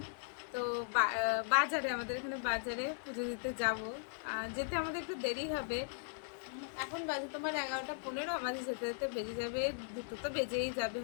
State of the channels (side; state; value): right; silent; digital silence